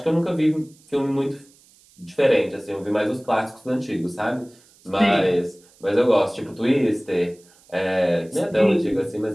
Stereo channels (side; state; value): right; noise; hiss, 29 dB below the sound